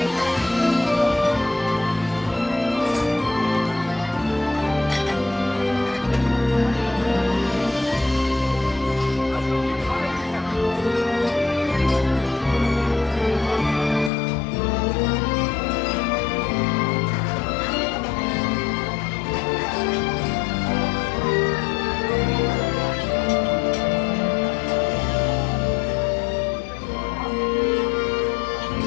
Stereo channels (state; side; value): drops out; right; at 14.1 s